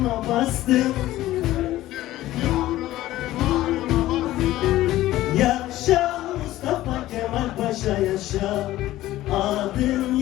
bastım. Yaşa Mustafa Kemal Paşa yaşa. Adın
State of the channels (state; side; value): quieter; right; 15.4 dB